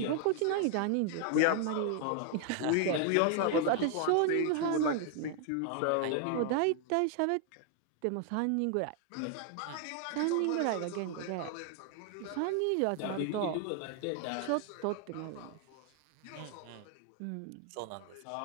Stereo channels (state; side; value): different; both; correlation 0.00